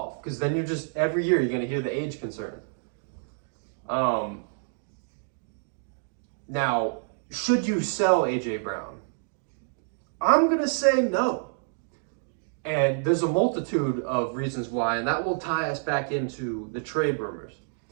Because then every year you're going to hear the age concern. Now, should you sell A.J. Brown? I'm going to say no. And there's a multitude of reasons why, and that will tie us back into the trade rumors.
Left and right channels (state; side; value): silent; left; digital silence